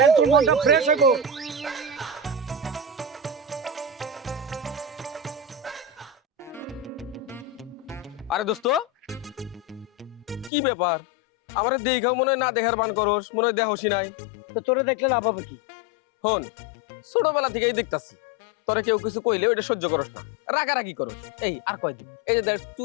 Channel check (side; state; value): right; drops out; at 10.5 s